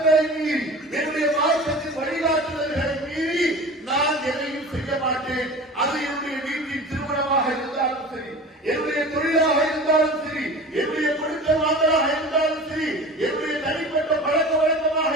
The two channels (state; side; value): normal; both; correlation 0.37